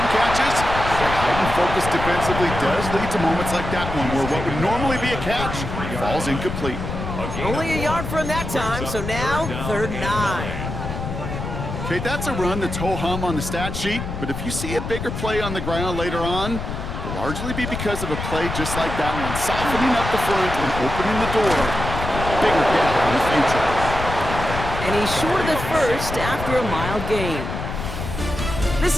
catches. But heightened focus defensively does lead to moments like that one where what would normally be a catch falls incomplete. Only a yard for him that time, so now 3rd and 9. Okay, that's a run that's ho-hum on the stat sheet, but if you see a bigger play on the ground later on, it'll largely be because of a play just like that one, softening up the front and opening the door for a bigger gap in the future. And he's short of the first after a mild gain. This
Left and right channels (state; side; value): noise; left; rumble, 6 dB below the sound